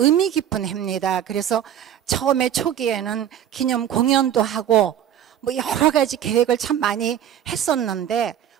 깊은 해입니다. 그래서 처음에 초기에는 기념 공연도 하고 뭐 여러 가지 계획을 참 많이 했었는데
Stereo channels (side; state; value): left; quieter; 10.2 dB